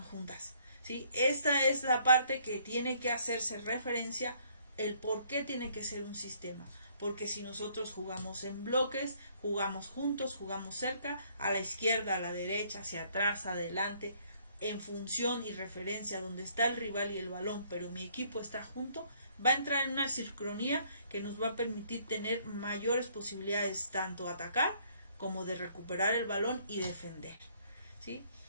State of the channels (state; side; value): inverted; both; correlation -0.64